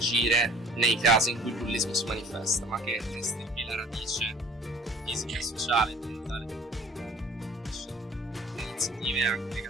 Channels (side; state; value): both; normal; correlation 0.50